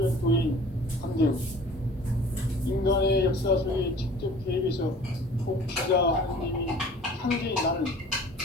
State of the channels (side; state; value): both; normal; correlation 0.47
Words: 도인 함대우, 인간의 역사 속에 직접 개입해서 통치자 하느님이 상제인 나는